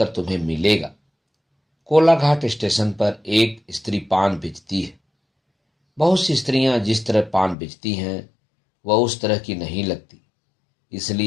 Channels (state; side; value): drops out; right; at 7.6 s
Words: तुम्हें मिलेगा। कोलाघाट स्टेशन पर एक स्त्री पान बेचती है। बहुत सी स्त्रियां जिस तरह पान बेचती हैं वह उस तरह की नहीं लगती,